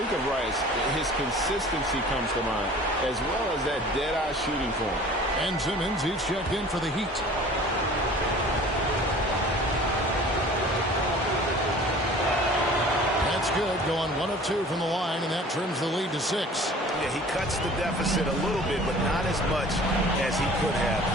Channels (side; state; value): both; normal; correlation 0.46